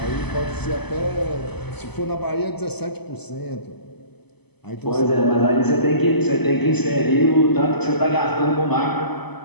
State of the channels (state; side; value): late; right; 0.98 ms